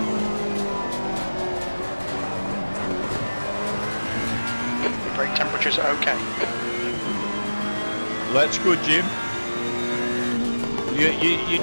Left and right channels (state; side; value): inverted; both; correlation -1.00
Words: Your brake temperature's okay. That's good, Jim. You